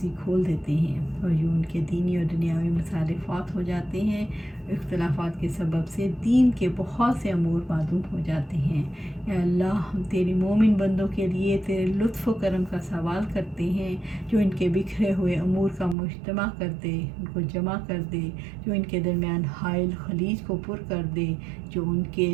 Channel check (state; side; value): drops out; left; at 16.0 s